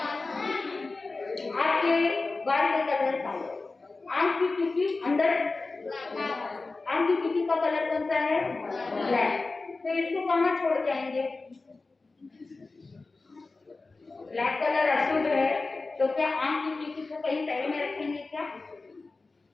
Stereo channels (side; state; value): right; quieter; 3.6 dB